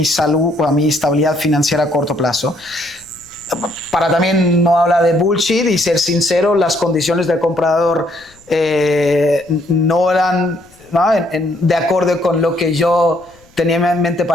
salud o mi estabilidad financiera a corto plazo. Para también no hablar de bullshit y ser sincero, las condiciones del comprador no eran, ¿no? de acuerdo con lo que yo tenía en mente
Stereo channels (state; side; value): noise; left; rumble, 29 dB below the sound